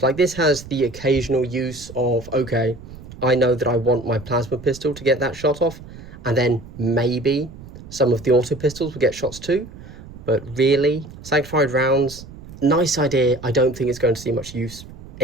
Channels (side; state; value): right; noise; rumble, 16 dB below the sound